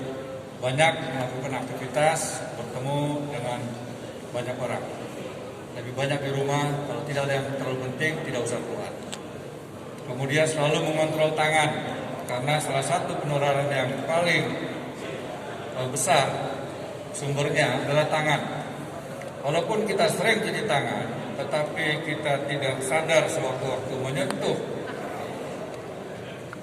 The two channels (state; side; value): identical; both; correlation 1.00